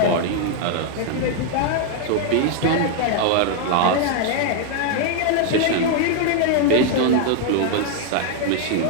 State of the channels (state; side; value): different; both; correlation 0.00